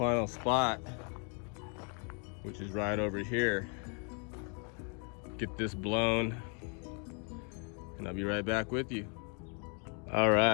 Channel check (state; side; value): quieter; right; 38.0 dB